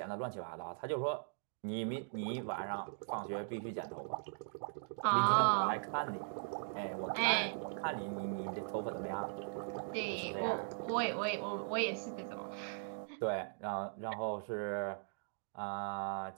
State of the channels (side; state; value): left; silent; digital silence